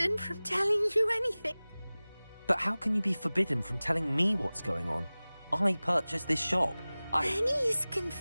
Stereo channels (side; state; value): both; inverted; correlation -0.99